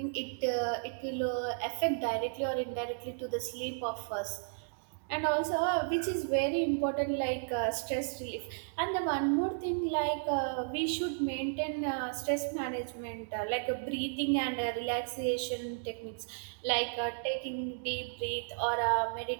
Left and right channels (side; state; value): left; silent; digital silence